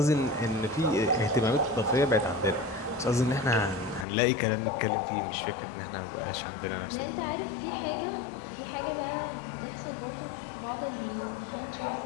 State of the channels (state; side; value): drops out; right; at 4.0 s